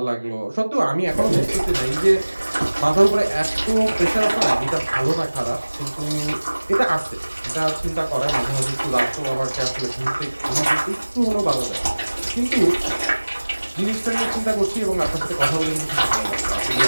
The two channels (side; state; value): both; inverted; correlation -1.00